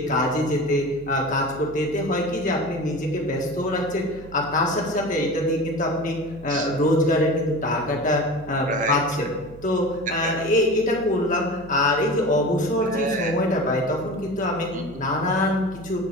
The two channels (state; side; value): noise; right; hum, 18 dB below the sound